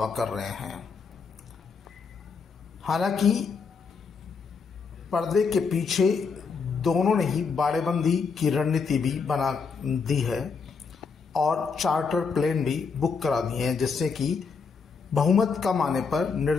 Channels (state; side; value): quieter; right; 5.2 dB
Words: कर रहे हैं। हालांकि पर्दे के पीछे दोनों ने ही बाड़ेबंदी की रणनीति भी बना दी है और चार्टर प्लेन भी बुक करा दिए हैं, जिससे कि बहुमत कम आने पर